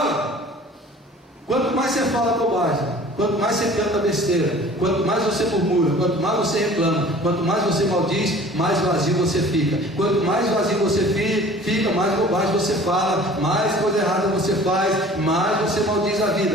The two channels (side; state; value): both; normal; correlation 0.47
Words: quanto mais você fala bobagem, quanto mais você canta besteira, quanto mais você murmura, quanto mais você reclama, quanto mais você maldiz, mais vazio você fica. Quanto mais vazio você fica, mais bobagem você fala, mais coisa errada você faz, mais você maldiz a